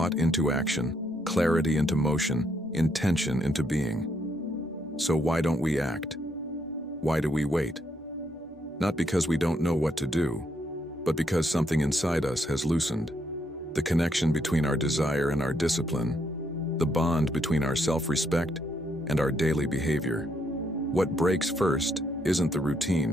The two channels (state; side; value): normal; both; correlation 0.75